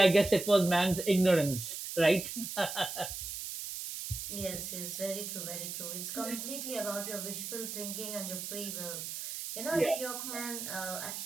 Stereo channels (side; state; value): right; noise; hiss, 6 dB below the sound